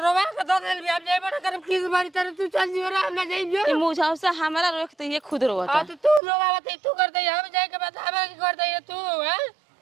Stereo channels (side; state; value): left; drops out; at 6.2 s